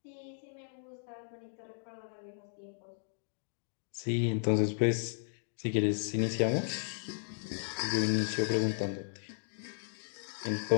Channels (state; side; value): silent; right; digital silence